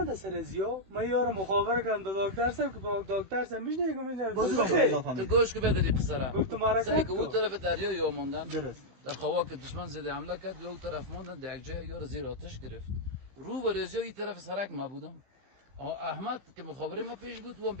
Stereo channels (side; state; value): left; late; 16 ms